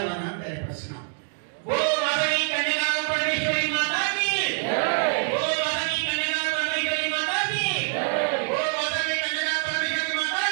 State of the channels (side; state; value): left; silent; 55 dB below the other